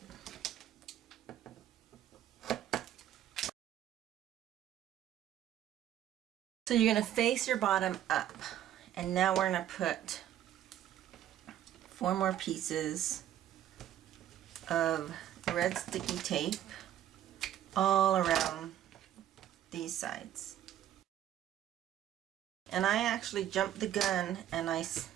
So you're going to face your bottom up, and now we're going to put 4 more pieces of red sticky tape all around these sides. And I actually jumped the gun and I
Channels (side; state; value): left; quieter; 11.6 dB